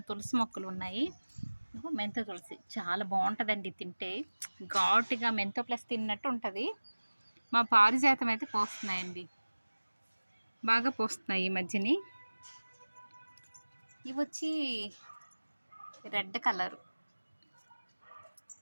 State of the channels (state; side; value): inverted; both; correlation -1.00